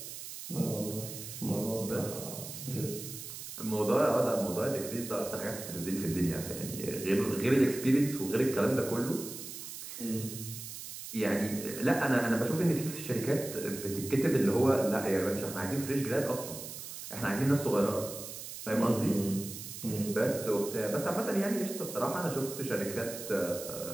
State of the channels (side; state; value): right; noise; hiss, 10 dB below the sound